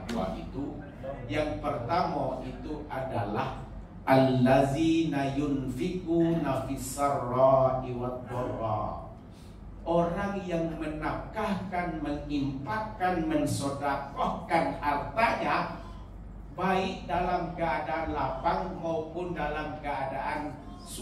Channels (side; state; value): both; identical; correlation 1.00